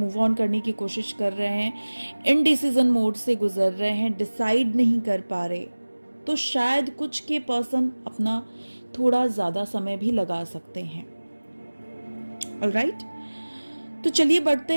ऑन करने की कोशिश कर रहे हैं, इनडिसीजन मोड से गुजर रहे हैं, डिसाइड नहीं कर पा रहे। तो शायद कुछ के पर्सन अपना थोड़ा ज्यादा समय भी लगा सकते हैं। ऑलराइट, तो चलिए बढ़ते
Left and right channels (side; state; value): both; inverted; correlation -1.00